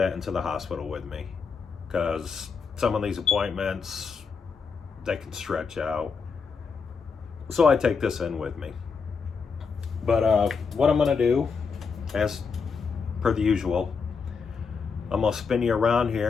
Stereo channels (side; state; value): right; quieter; 5.4 dB